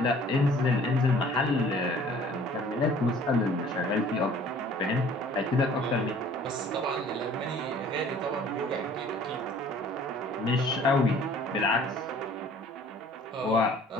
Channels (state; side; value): normal; both; correlation 0.52